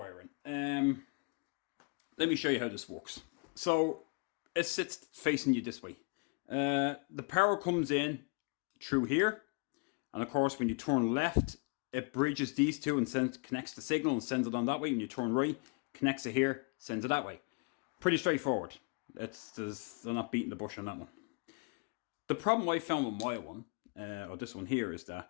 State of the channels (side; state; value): right; quieter; 32.9 dB